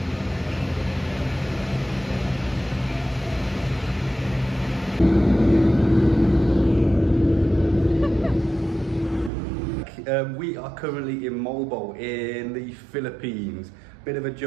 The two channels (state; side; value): drops out; left; at 9.3 s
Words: We are currently in Moalboal in the Philippines. Bit of a